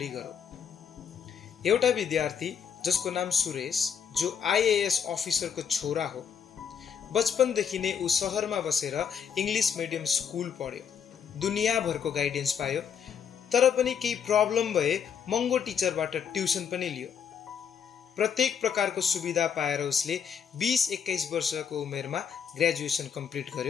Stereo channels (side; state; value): right; quieter; 7.6 dB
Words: गरौँ। एउटा विद्यार्थी जसको नाम सुरेश, जो आईएएस अफिसरको छोरा हो, बचपनदेखि नै ऊ सहरमा बसेर इङ्ग्लिस मिडियम स्कुल पढ्यो, दुनियाँभरको गाइडेन्स पायो, तर पनि केही प्रब्लम भए महँगो टिचरबाट ट्युसन पनि लियो। प्रत्येक प्रकारको सुविधा पाएर उसले 20-21 वर्षको उमेरमा ग्रेजुएसन कम्प्लिट